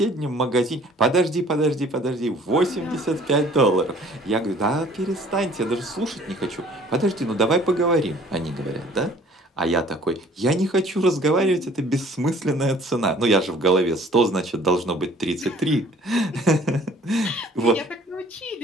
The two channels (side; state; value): both; normal; correlation 0.54